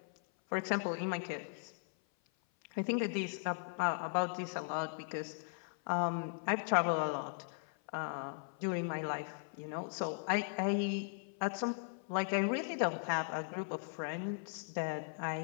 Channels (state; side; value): silent; right; 52 dB below the other